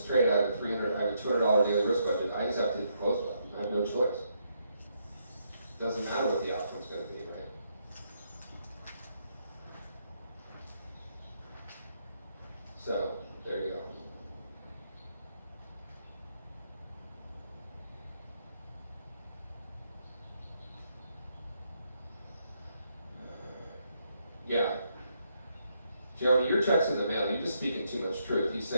trade. I have a $200 daily risk budget. I just have to hit the close button. I have no choice. Doesn't matter what the outcome's going to be, right? So there you go. Yeah. Jeremy, your check's in the mail. You're just speaking too much truth. He's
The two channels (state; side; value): inverted; both; correlation -0.76